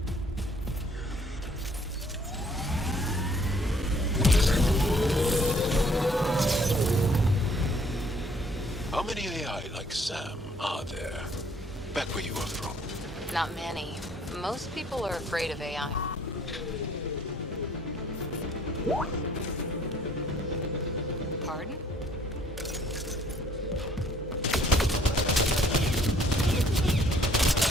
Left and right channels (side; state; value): both; normal; correlation 0.61